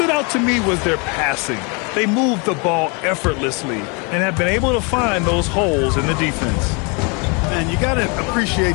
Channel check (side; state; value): right; quieter; 32.4 dB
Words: out to me was their passing. They moved the ball effortlessly and have been able to find those holes in the defense. And you got to